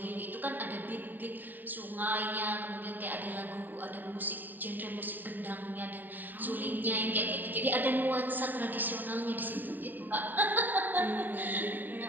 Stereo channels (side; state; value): left; late; 0.089 ms